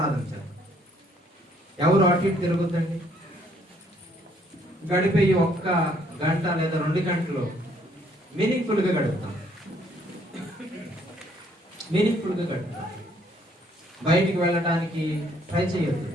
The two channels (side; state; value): both; normal; correlation 0.66